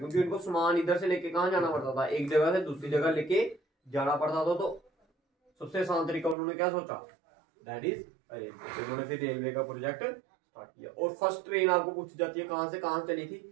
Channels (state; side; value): drops out; left; at 6.4 s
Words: उनको सामान इधर से लेके कहाँ जाना पड़ता था, एक जगह से दूसरी जगह लेके जाना पड़ता था। तो सबसे आसान तरीका उन्होंने क्या सोचा, दैट इज रेलवे। उन्होंने फिर रेलवे का प्रोजेक्ट स्टार्ट किया। और फर्स्ट ट्रेन आपको पूछी जाती है कहां से कहां चली थी,